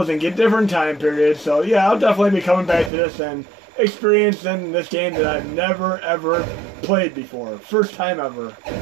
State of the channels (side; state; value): left; drops out; at 2.9 s